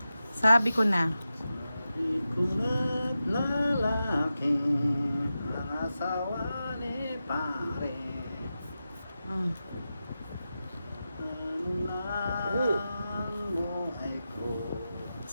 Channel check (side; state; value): both; inverted; correlation -0.92